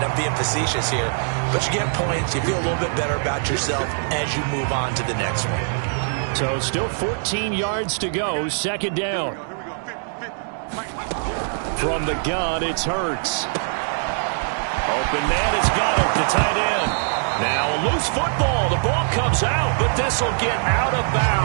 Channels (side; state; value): left; silent; digital silence